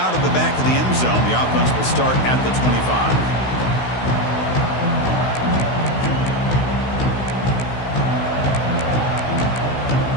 of the back of the end zone. The offense will start at the 25.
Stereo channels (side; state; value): right; late; 16 ms